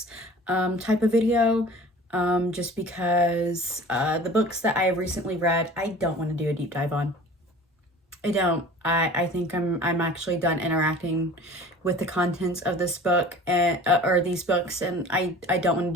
type of video, just because the books that I have recently read I don't want to do a deep dive on. I don't. I think I'm actually done interacting with the contents of this book and or these books, and I don't want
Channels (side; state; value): both; normal; correlation 0.43